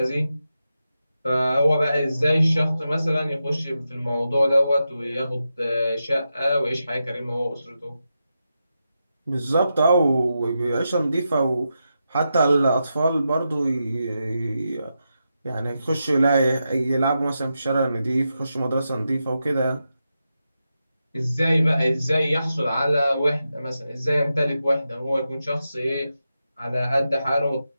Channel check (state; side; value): inverted; both; correlation -0.88